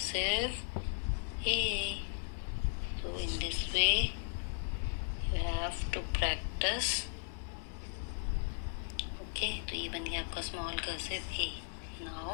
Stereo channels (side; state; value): right; silent; digital silence